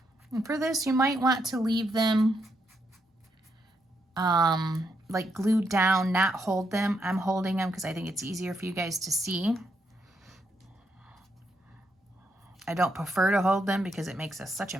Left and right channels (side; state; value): both; normal; correlation 0.79